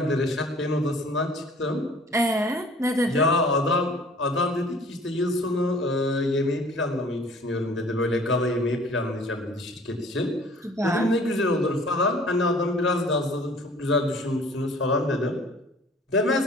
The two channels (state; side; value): normal; both; correlation 0.51